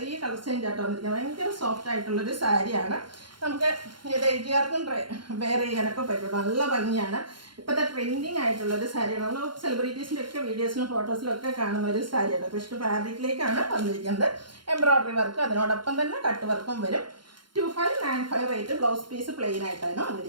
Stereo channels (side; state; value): left; late; 0.72 ms